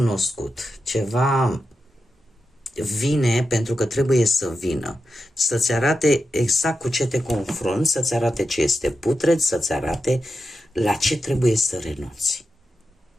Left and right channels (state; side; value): normal; both; correlation 0.89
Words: ceva vine pentru că trebuie să vină, să-ți arate exact cu ce te confrunți, să-ți arate ce este putred, să-ți arate la ce trebuie să renunți.